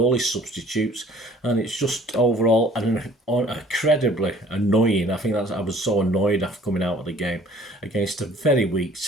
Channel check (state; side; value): normal; both; correlation 0.53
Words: his substitutes, and it's just overall incredibly annoying. I think I was so annoyed after coming out of the game against a very weak